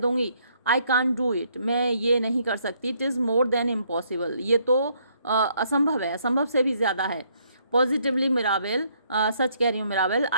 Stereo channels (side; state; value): both; inverted; correlation -0.69